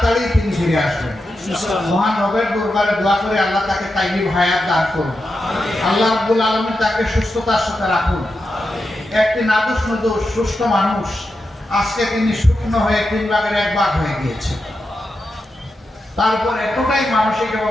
তিনি ফিরে আসবেন। মহান রবের দরবারে দোয়া করে আল্লাহ তাকে তাইয়িব হায়াত দান করুন। আল্লাহ রাব্বুল আলামিন তাকে সুস্থতার সাথে রাখুন। একটি নাদুস নুদুস সুস্থ মানুষ, আজকে তিনি শুকনো হয়ে 3 ভাগের 1 ভাগ হয়ে গিয়েছে। তারপর এতটাই মানসিক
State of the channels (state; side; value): normal; both; correlation 0.88